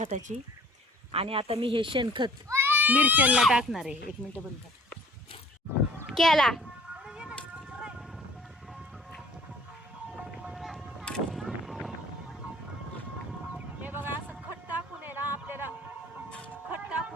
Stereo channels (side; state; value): both; normal; correlation 0.52